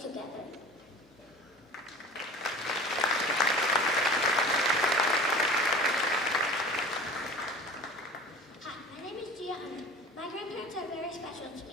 together. Hi, my name is Gia Hunter. My grandparents are very special to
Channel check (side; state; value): both; normal; correlation 0.40